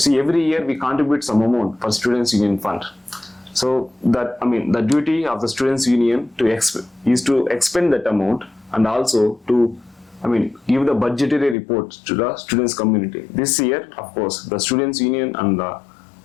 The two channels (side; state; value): right; drops out; at 11.6 s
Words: See, every year we contribute some amount for students union fund. So that, the duty of the students union is to expend that amount, and also to give the budgetary report to the students community. This year, of course, the students union and the